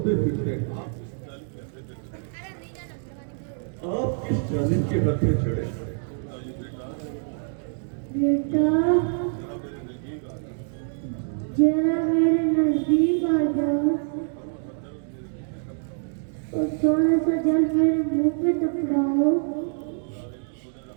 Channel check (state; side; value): silent; left; 61 dB below the other